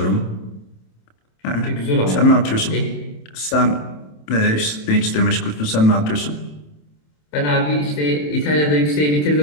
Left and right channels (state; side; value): late; right; 27 ms